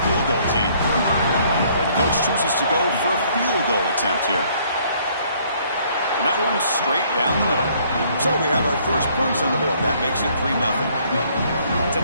field goal team. The coach chooses to go for a field goal attempt here. And that one's straight down the middle. So we have our first points on the board. That makes it 3-0. It's a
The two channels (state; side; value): inverted; both; correlation -0.63